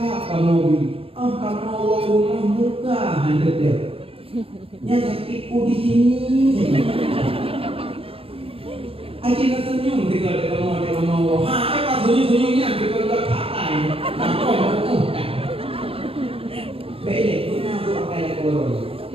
kamu bi, kamu rumah muka hendak dia, yang sakitku di sini. Aji nak senyum dengan kamu, apa senyum-senyumnya kita dah katai, aku baik, guna aku pakai kolor.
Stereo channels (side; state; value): left; late; 0.27 ms